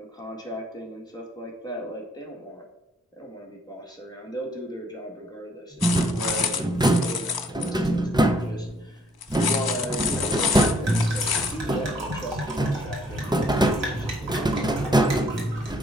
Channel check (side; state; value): both; normal; correlation 0.64